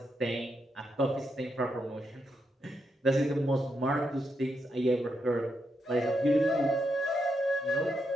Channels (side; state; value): both; normal; correlation 0.82